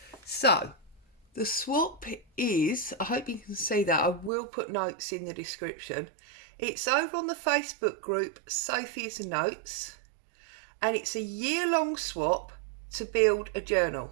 So the swap is, I hope you can see that, I will put notes in the description. It's over on the Facebook group Sophie's Notes, and it's a year-long swap to build a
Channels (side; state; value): left; drops out; at 4.3 s